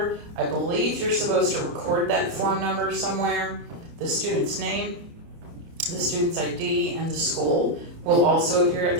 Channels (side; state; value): left; late; 29 ms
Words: I believe you're supposed to record that form number somewhere, the student's name, the student's ID, and the school will also appear at